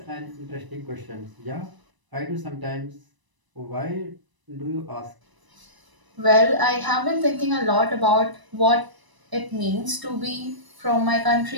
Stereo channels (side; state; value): left; late; 1.0 ms